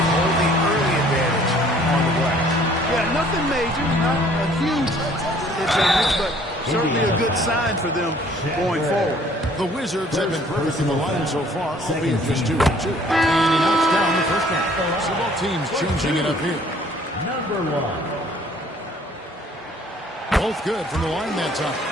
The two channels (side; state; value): both; normal; correlation 0.57